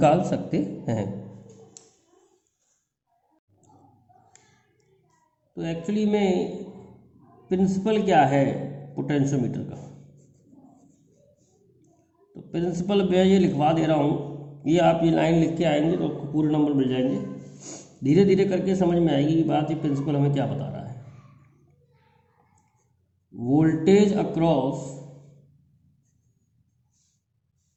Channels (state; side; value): identical; both; correlation 1.00